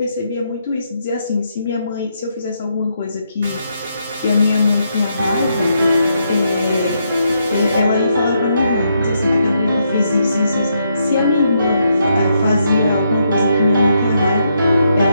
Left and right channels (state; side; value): inverted; both; correlation -0.78